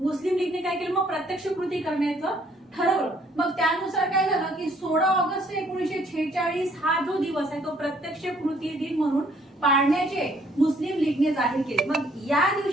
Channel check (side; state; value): both; normal; correlation 0.64